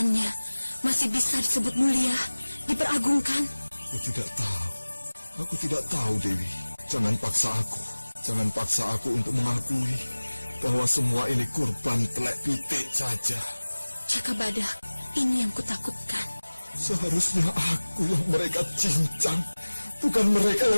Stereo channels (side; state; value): both; inverted; correlation -1.00